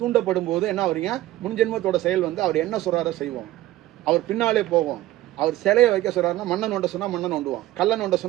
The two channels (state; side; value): quieter; left; 15.5 dB